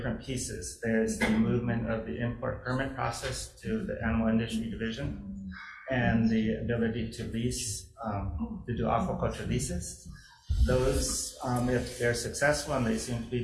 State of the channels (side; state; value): both; identical; correlation 1.00